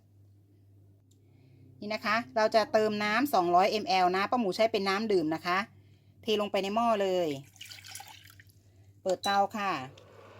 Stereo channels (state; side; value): identical; both; correlation 1.00